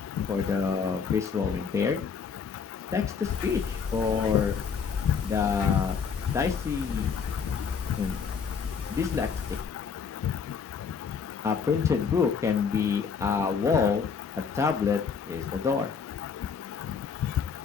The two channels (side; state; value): right; quieter; 6.2 dB